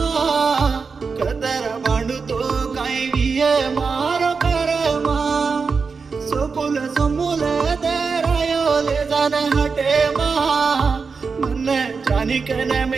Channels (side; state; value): left; quieter; 5.0 dB